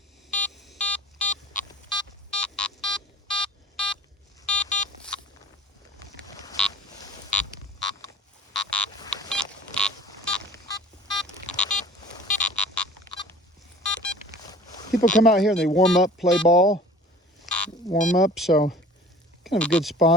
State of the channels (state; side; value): normal; both; correlation 0.46